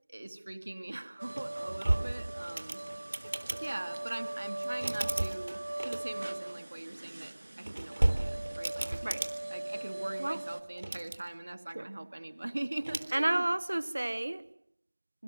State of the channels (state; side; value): inverted; both; correlation -1.00